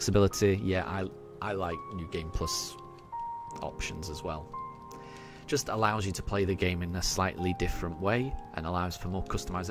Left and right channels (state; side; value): identical; both; correlation 1.00